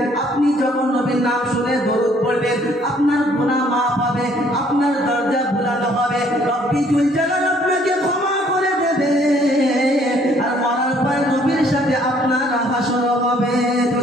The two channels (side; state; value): both; normal; correlation 0.62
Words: আপনি যখন নবীর নাম শুনে দরুদ পড়বেন আপনার গুনাহ মাফ হবে, আপনার দরজা ভুলানো হবে, রব্বি জুল জালাল আপনাকে ক্ষমা করে দেবে, আর মরার পর নবীর সাথে আপনার হাসর হবে।